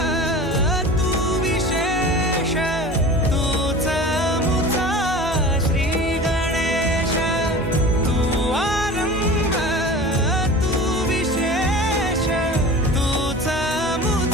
तू विशेष, तूच मुचा श्री गणेश, तू आरंभ तू विशेष, तूच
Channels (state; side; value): normal; both; correlation 0.37